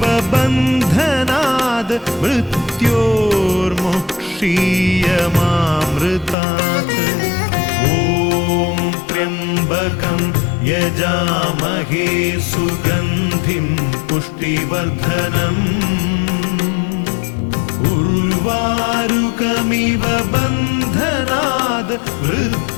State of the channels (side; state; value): right; drops out; at 6.4 s